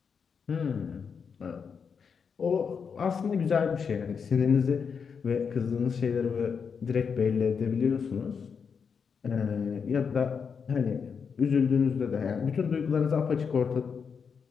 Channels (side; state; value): right; quieter; 6.2 dB